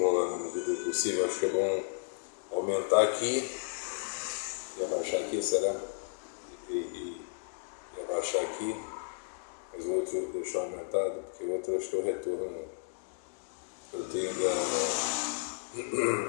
na medida do possível. Acho que é bom aumentar aqui e abaixar aqui, será? E abaixar aqui, mas o outro deixar aumentado, porque o outro acho que é o retorno que eu tenho da...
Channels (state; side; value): silent; right; digital silence